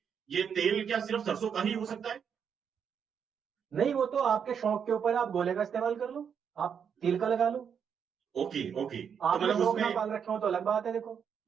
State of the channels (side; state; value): left; quieter; 7.4 dB